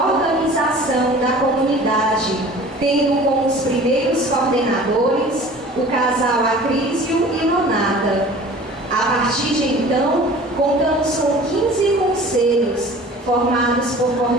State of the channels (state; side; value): normal; both; correlation 0.44